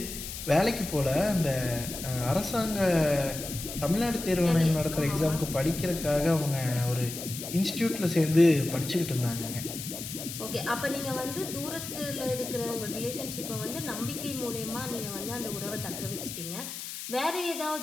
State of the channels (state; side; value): noise; left; hiss, 8 dB below the sound